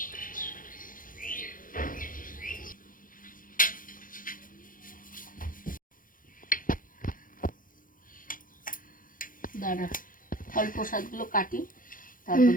দাঁড়া, ফল প্রসাদগুলো কাটি,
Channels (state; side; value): late; right; 0.40 ms